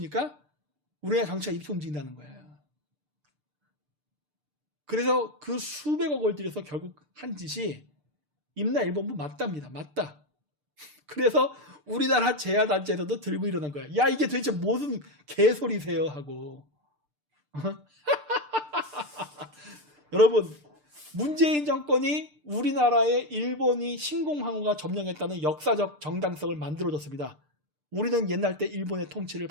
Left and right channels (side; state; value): left; late; 6.7 ms